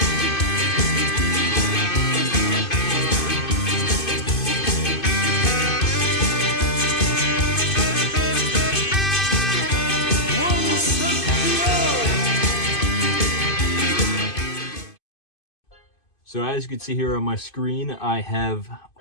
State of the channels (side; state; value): right; late; 2.5 ms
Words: So as you can see here on my screen, I have